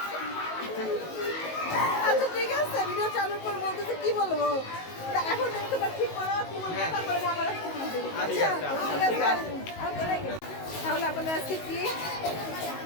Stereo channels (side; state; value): right; late; 19 ms